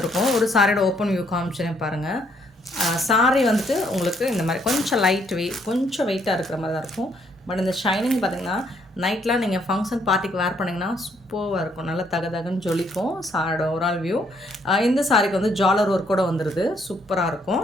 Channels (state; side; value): normal; both; correlation 0.70